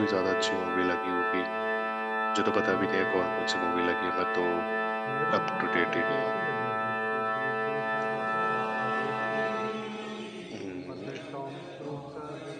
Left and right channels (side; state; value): both; identical; correlation 1.00